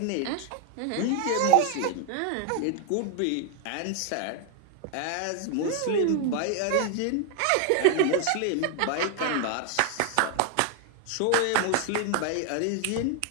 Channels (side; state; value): both; different; correlation 0.00